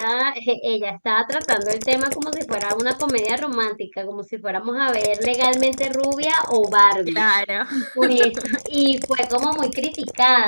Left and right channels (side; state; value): both; inverted; correlation -1.00